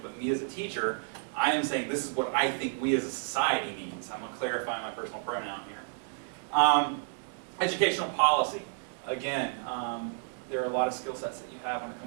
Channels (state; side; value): silent; left; digital silence